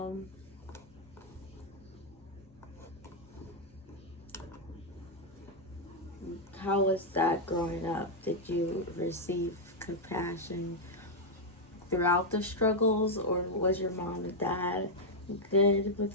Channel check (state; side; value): normal; both; correlation -0.02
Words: how was that growing up? Did you receive compassion throughout the struggles, or was your mom and dad good